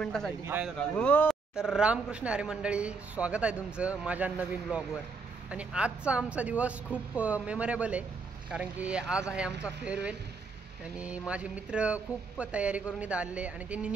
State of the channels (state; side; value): quieter; left; 4.5 dB